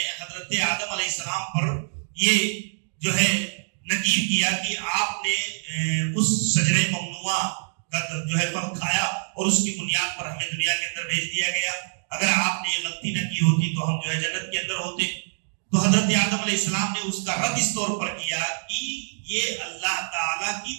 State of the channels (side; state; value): left; silent; digital silence